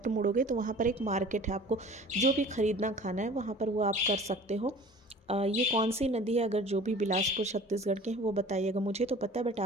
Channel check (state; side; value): normal; both; correlation 0.45